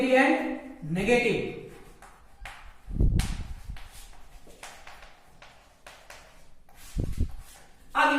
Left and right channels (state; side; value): identical; both; correlation 1.00